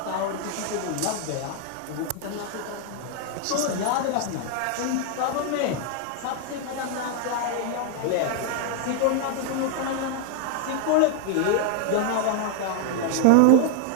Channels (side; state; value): both; different; correlation 0.00